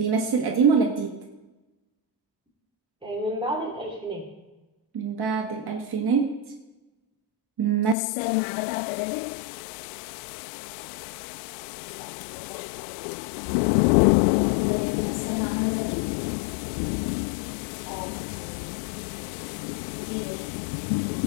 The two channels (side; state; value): right; drops out; at 8.0 s